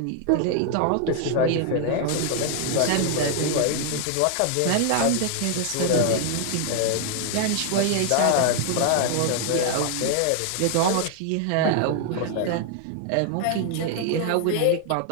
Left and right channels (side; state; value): both; different; correlation 0.00